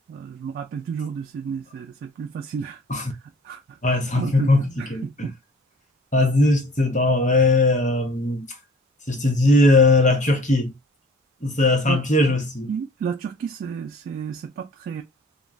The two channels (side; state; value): both; normal; correlation 0.49